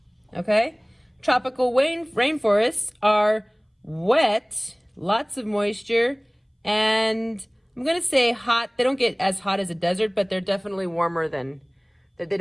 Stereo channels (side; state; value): both; identical; correlation 1.00